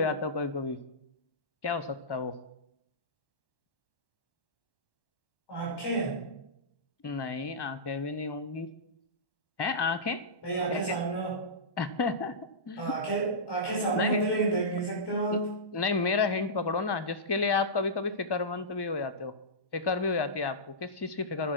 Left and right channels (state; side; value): late; right; 1.1 ms